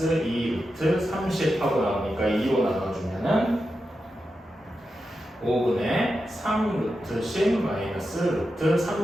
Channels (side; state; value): both; normal; correlation 0.89